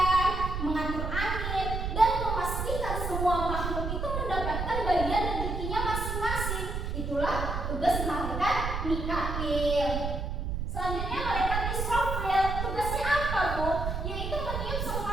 mengatur angin, dan memastikan semua makhluk itu mendapatkan bagian rezekinya masing-masing. Itulah tugas malaikat Mikail. Selanjutnya malaikat Israfil, tugasnya apa, Bu? Yaitu meniup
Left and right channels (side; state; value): right; noise; rumble, 3 dB below the sound